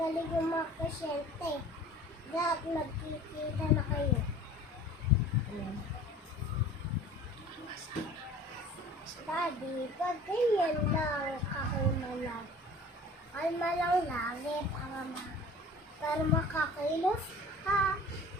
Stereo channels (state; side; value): normal; both; correlation 0.44